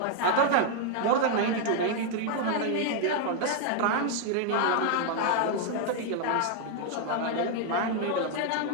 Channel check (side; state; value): both; different; correlation 0.00